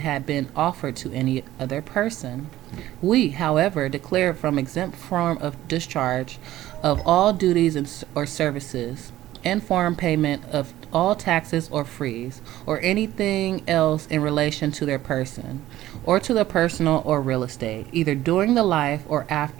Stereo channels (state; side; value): quieter; left; 14.6 dB